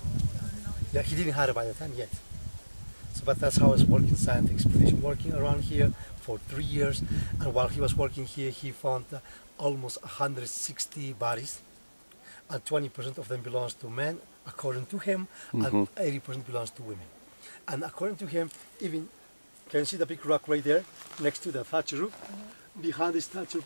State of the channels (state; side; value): inverted; both; correlation -1.00